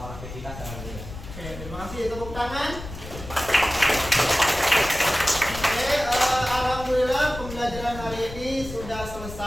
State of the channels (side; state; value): left; noise; rumble, 12 dB below the sound